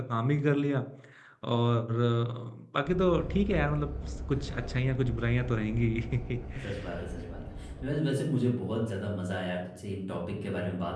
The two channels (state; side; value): identical; both; correlation 1.00